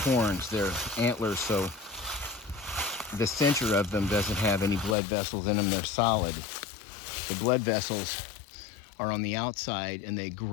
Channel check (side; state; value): right; drops out; at 5.0 s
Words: they're antlers, so the center of them doesn't have any blood vessels in them, they're solid. The blood vessels are on the outside and they